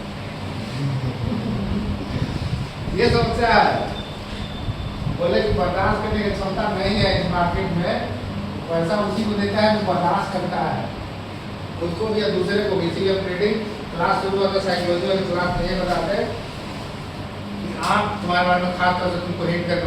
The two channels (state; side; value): identical; both; correlation 1.00